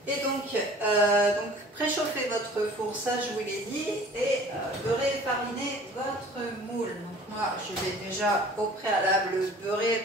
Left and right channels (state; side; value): normal; both; correlation 0.48